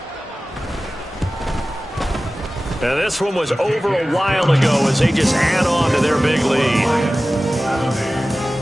Now this one was over a while ago as they just add on to their big lead.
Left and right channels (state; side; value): normal; both; correlation 0.96